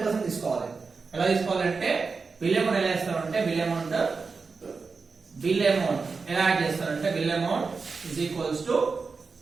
తీసుకోవాలి. ఎలా తీసుకోవాలంటే bill amount ఎలా చేస్తారంటే బిల్ అమౌంట్ ఎలా యాడ్ చేస్తారంటే bill amount is equals to,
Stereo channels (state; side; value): quieter; left; 4.6 dB